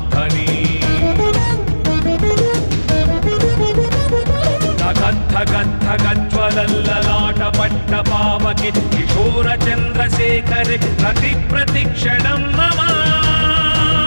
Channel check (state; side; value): inverted; both; correlation -1.00